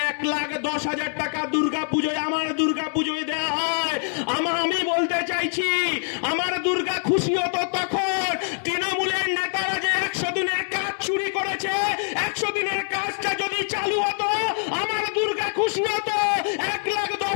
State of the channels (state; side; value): silent; right; 62 dB below the other